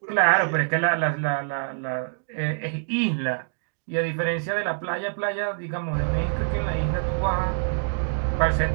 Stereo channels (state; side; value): silent; left; digital silence